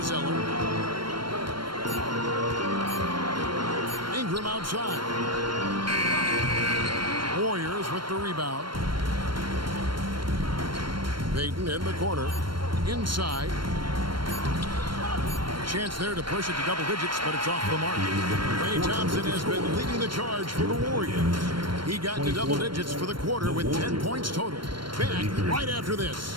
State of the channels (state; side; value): late; left; 0.72 ms